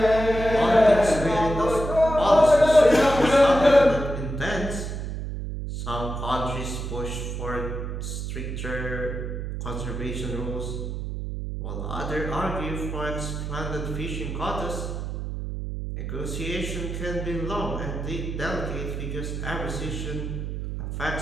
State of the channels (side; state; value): right; noise; hum, 5 dB below the sound